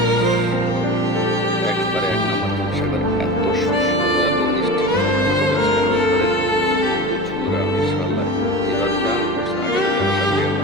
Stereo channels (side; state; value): both; normal; correlation 0.31